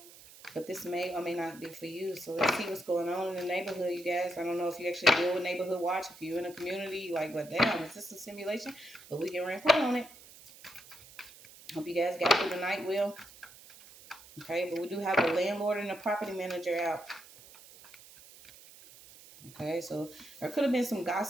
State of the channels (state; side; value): noise; right; hiss, 20 dB below the sound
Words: But this may or may not be for you. So let's see what's going on in the neighborhood, you guys. I don't know if you actually deal with Neighborhood Watch. If you're in a community, you're like, what, damn, is this a simulation? But we can rank on it. Hope you guys got through the night well. Okay, but we do have a landlord and a property manager out. Okay, so there could have been some